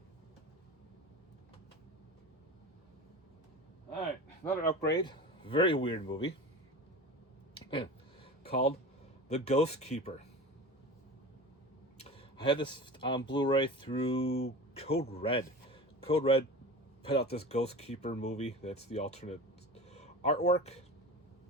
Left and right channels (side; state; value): both; normal; correlation 0.33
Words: Alright, another upgrade. Very weird movie. Called The Ghost Keeper. I had this on Blu-ray through Code Red. Code Red put out this Ghost Keeper movie. That's the alternate artwork.